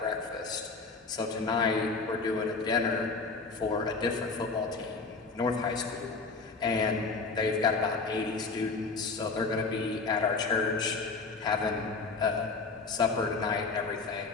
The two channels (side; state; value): right; quieter; 4.2 dB